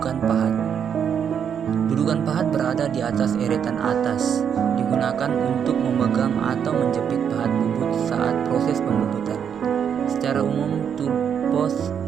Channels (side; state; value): left; quieter; 7.9 dB